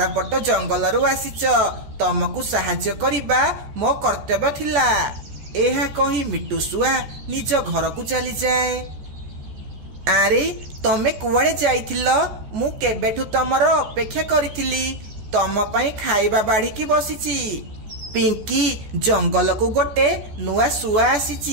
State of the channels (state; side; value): late; left; 14 ms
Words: जंगल रु आसीच, तमको साहाय्य करिबा मो कर्तव्य थिला। एहा कही मिट्टू शुआ निज घर को चली जाए। आरे तमे कुआड़े जाइथिल? मु केबेठु तमर अपेक्षा करिथिली। तम पाई खाइबा बाढ़ी की बसीची। पिंकी जंगल को गोटे नुआ शुआ